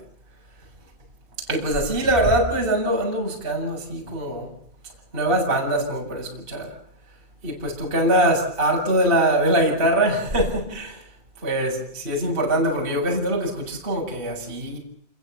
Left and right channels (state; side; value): late; left; 2.7 ms